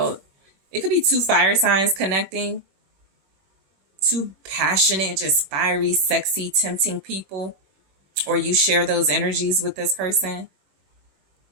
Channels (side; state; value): left; late; 21 ms